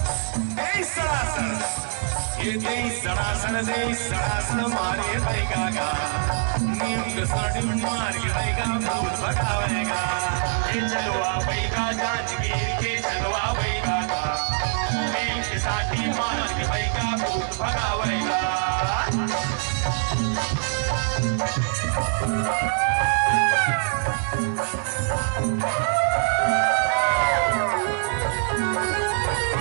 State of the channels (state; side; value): silent; left; 58 dB below the other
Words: ये सड़ासन मारे बैगा। नीम के साड़ी मार के बैगा भूत भगावेगा। ये चंदवा बैगा जांजगीर के चंदवा बैगा। नीम के साड़ी मार के बैगा भूत भगावेगा।